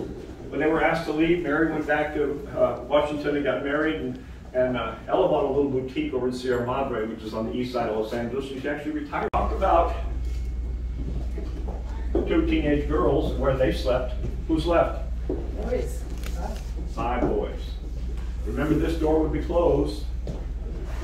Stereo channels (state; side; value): identical; both; correlation 1.00